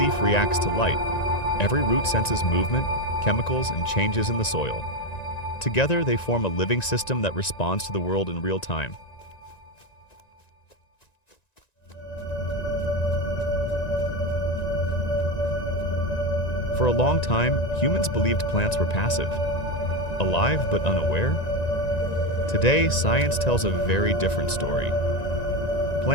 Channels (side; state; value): right; late; 1.9 ms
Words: reacts to light. Every root senses movement, chemicals, and changes in the soil. Together, they form a living system that responds to the world in real time. For a long time, humans believed plants were passive, alive but unaware. Today, science tells a very different story.